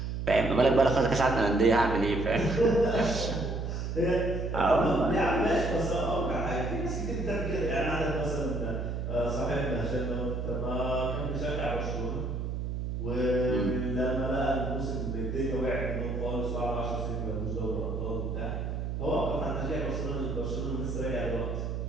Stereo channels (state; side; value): noise; right; hum, 3 dB below the sound